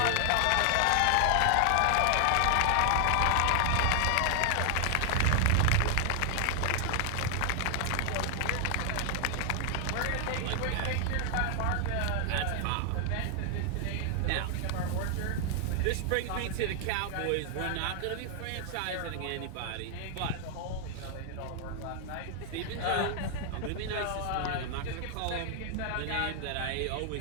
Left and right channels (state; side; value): different; both; correlation 0.00